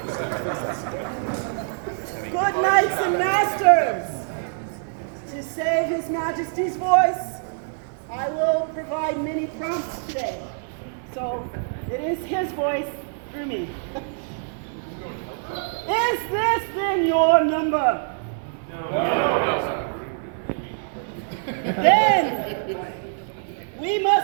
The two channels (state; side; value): silent; left; 62 dB below the other